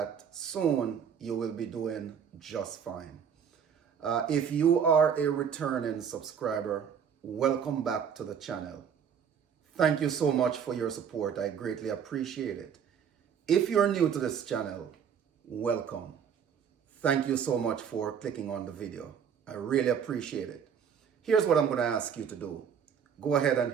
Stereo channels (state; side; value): quieter; left; 7.6 dB